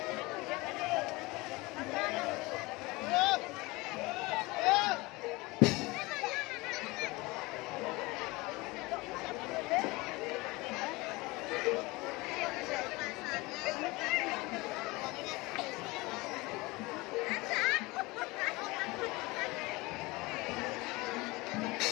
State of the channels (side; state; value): right; quieter; 23.0 dB